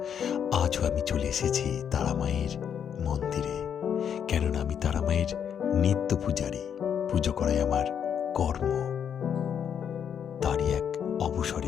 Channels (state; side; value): quieter; right; 8.2 dB